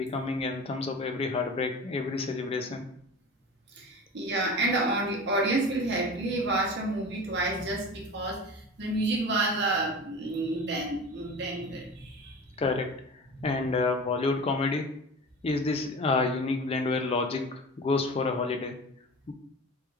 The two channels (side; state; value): both; normal; correlation 0.34